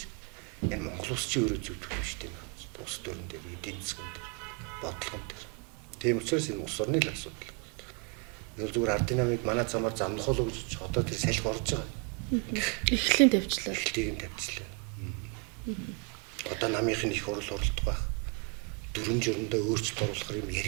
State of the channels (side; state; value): left; quieter; 34.2 dB